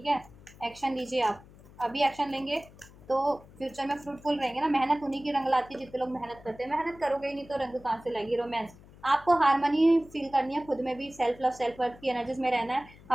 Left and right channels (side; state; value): left; noise; hum, 22 dB below the sound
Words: है। एक्शन लीजिए आप, अभी एक्शन लेंगे तो फ्यूचर में फ्रूटफुल रहेंगे ना। मेहनत उन्हीं की रंग लाती है जितने लोग मेहनत करते हैं, मेहनत करोगे ही नहीं तो रंग कहाँ से लगेगी। रोमांस, आपको हारमोनी फील करनी है खुद में भी, सेल्फ लव सेल्फ वर्थ की एनर्जीज में रहना है।